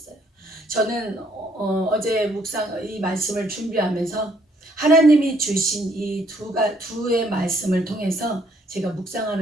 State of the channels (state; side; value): normal; both; correlation 0.67